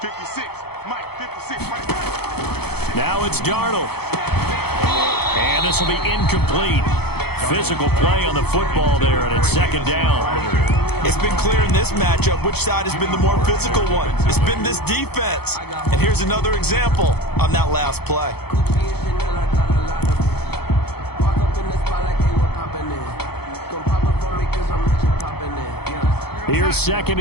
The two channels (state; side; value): late; right; 0.96 ms